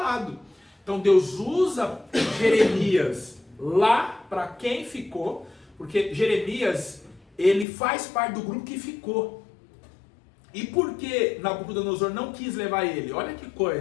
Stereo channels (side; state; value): right; drops out; at 7.7 s